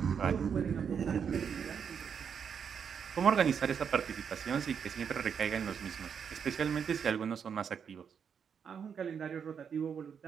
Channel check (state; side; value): quieter; left; 7.1 dB